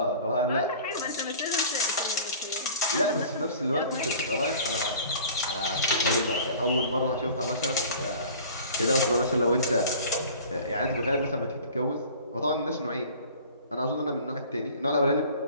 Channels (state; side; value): inverted; both; correlation -0.45